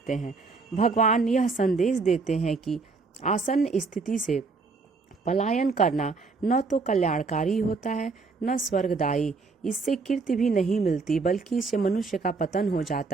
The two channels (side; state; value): left; quieter; 4.2 dB